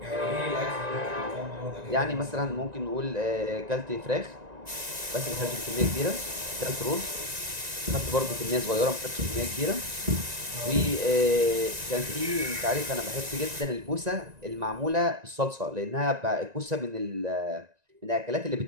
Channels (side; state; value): left; late; 1.9 ms